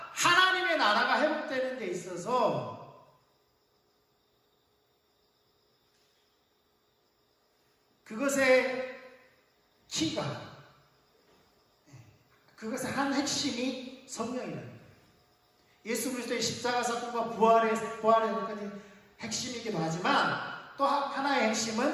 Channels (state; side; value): identical; both; correlation 1.00